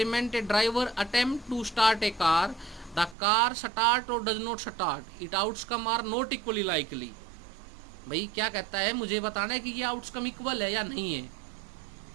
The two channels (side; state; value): left; drops out; at 3.2 s